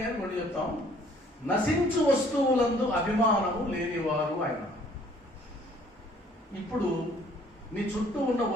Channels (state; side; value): normal; both; correlation 0.59